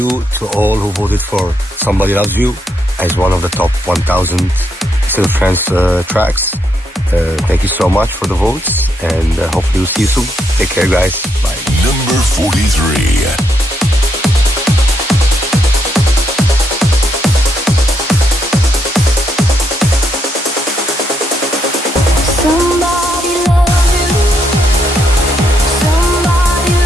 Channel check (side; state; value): both; normal; correlation 0.77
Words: to all who voted for Somebody Loves You as one of the top 1000 State of Trance tracks. Thank you so much for the votes, and hopefully we'll see you soon. Take care guys, bye. Number 43.